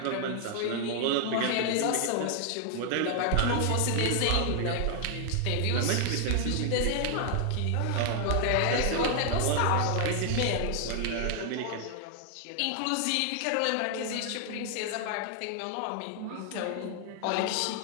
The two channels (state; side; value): different; both; correlation 0.00